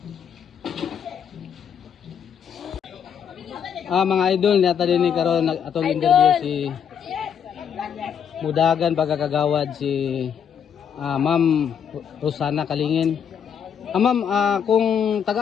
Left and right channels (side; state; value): right; quieter; 7.9 dB